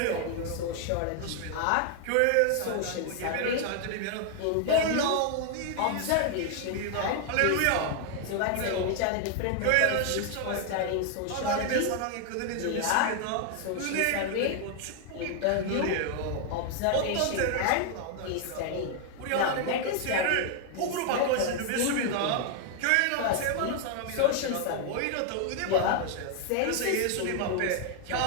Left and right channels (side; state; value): both; different; correlation 0.00